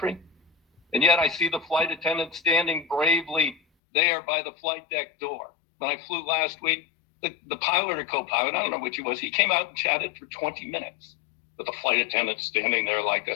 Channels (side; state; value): right; drops out; at 3.6 s